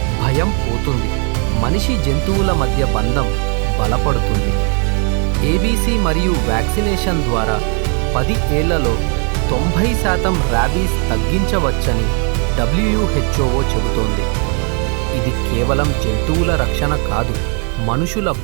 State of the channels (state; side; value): quieter; left; 39.4 dB